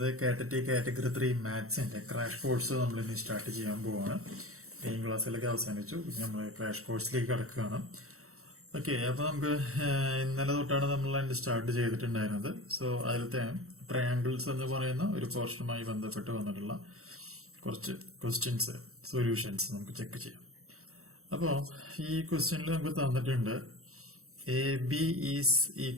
K.TET കാറ്റഗറി 3 മാത്സിന്റെ ക്രാഷ് കോഴ്സ് നമ്മൾ ഇനി സ്റ്റാർട്ട് ചെയ്യാൻ പോവാണ്. മെയിൻ ക്ലാസ്സിലൊക്കെ അവസാനിച്ചു, നമ്മൾ ക്രാഷ് കോഴ്സിലേക്ക് കടക്കുകയാണ്. ഓക്കെ, അപ്പൊ നമുക്ക് ഇന്നലെ തൊട്ടാണ് നമ്മൾ അതിന്റെ സ്റ്റാർട്ട് ചെയ്തിട്ടുണ്ടായിരുന്നത്. സോ അതിലത്തെ ട്രയാങ്കിൾസ് എന്ന് പറയുന്ന ഒരു പോർഷനുമായി ബന്ധപ്പെട്ട് വന്നിട്ടുള്ള കുറച്ച് ക്വസ്റ്റ്യൻസ് സൊല്യൂഷൻസ് നമുക്ക് ചെക്ക് ചെയ്യാം. അപ്പോൾ ഈ ക്വസ്റ്റ്യനിൽ നമുക്ക് തന്നിട്ടുണ്ട് A B is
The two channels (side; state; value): left; late; 0.63 ms